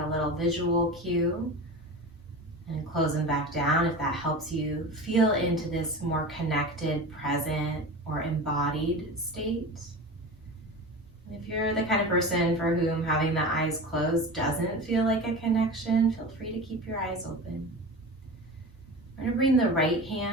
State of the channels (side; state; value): both; normal; correlation 0.30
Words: little visual cue and close them back down if that helps you feel into this more connected, present, or embodied state. If you're the kind of person for whom having the eyes closed doesn't feel like a connection, feel free to keep your eyes open. We're going to bring the right